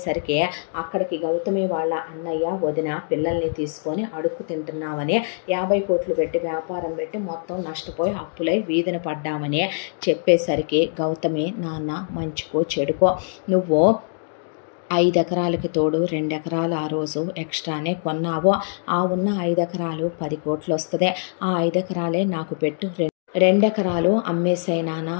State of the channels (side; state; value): right; silent; digital silence